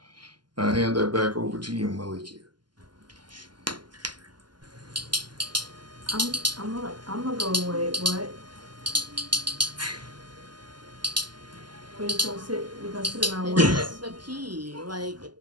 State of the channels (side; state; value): left; late; 0.71 ms